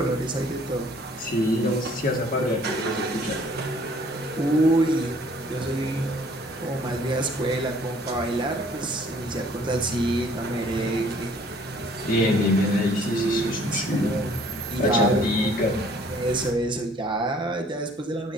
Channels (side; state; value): both; normal; correlation 0.57